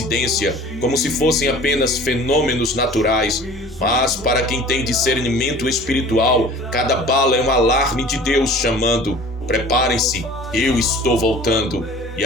como se fossem apenas fenômenos naturais. Mas para quem tem discernimento espiritual, cada bala é um alarme de Deus chamando: preparem-se, eu estou voltando. E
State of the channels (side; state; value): both; normal; correlation 0.45